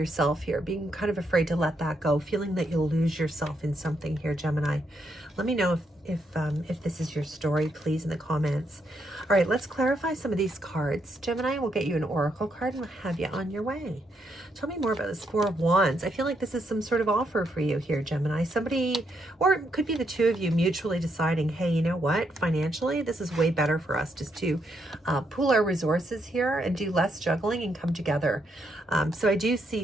here, being kind of afraid to let that go, feeling that you'll lose yourself in something here, Gemini. Let me know if this is your story, please, in the comments. All right, let's clarify some of these cards. Gemini, we'll get you an oracle card and we'll have you on your way. Tell me more about this Four of Wands. I feel like this is some sort of offer for you here, Gemini. Somebody, or it could be the two of you mutually deciding, hey, you know what? Financially, this is way better for us just to pool our resources here and do less juggling and come together. So I do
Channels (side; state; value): both; normal; correlation 0.78